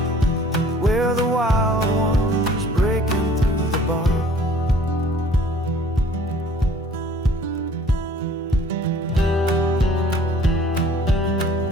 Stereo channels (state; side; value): normal; both; correlation 0.53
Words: We're the wild ones breaking through the bars.